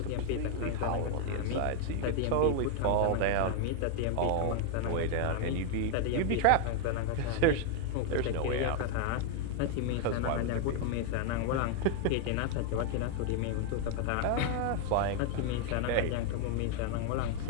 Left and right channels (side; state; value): both; different; correlation 0.00